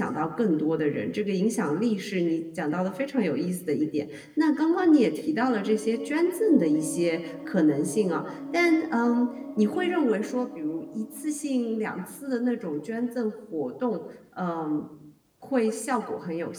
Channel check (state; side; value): identical; both; correlation 1.00